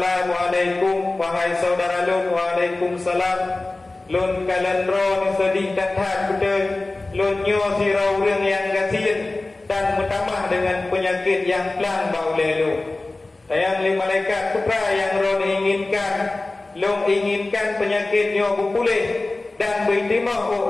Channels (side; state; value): right; quieter; 3.1 dB